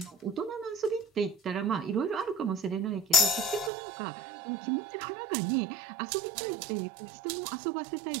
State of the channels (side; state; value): left; drops out; at 3.7 s